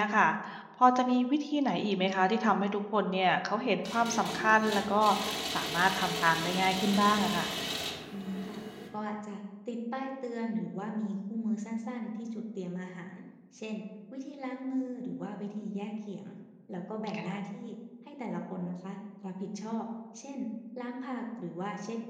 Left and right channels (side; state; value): both; identical; correlation 1.00